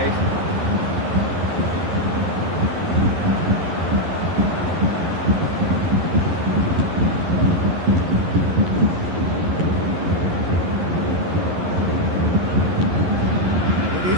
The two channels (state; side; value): late; left; 11 ms